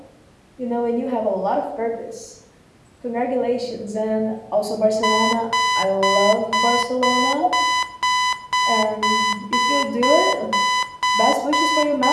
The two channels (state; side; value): identical; both; correlation 1.00